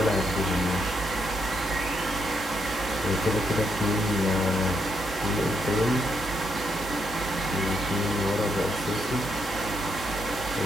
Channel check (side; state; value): both; normal; correlation 0.78